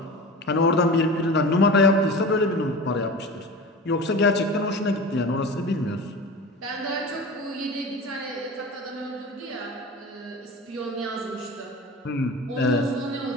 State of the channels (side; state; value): both; normal; correlation 0.33